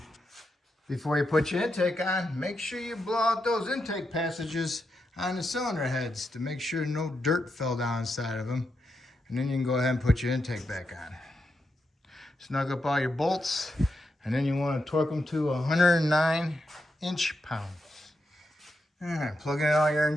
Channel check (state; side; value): normal; both; correlation 0.85